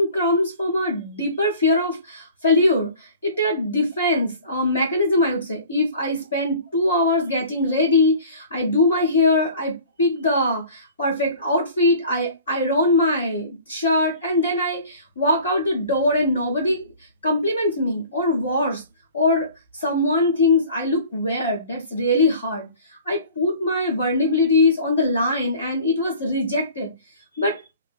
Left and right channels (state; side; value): inverted; both; correlation -0.46